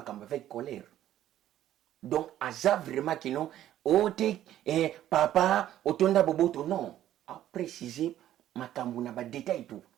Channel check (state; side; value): quieter; left; 12.4 dB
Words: campagne avec colère. Donc, à vraiment qui non, papa, otonda boboto, non. A précisé ma campagne, na ba détail tout.